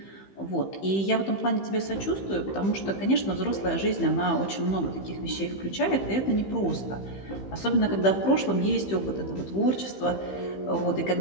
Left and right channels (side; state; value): right; late; 15 ms